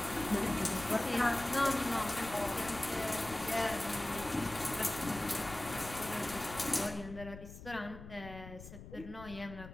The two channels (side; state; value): left; noise; rumble, 14 dB below the sound